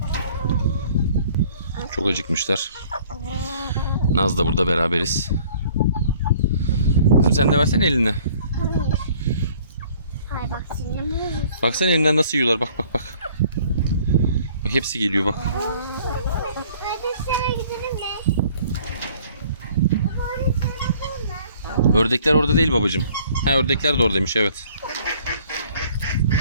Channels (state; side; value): inverted; both; correlation -0.55